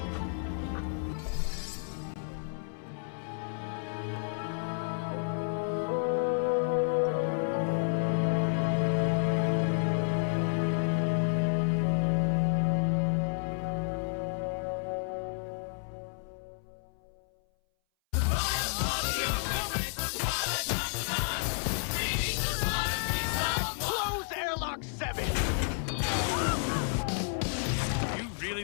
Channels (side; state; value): right; silent; 57 dB below the other